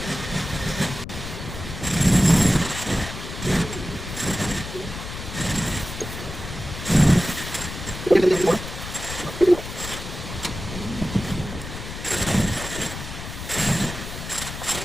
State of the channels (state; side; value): noise; left; rumble, 9 dB below the sound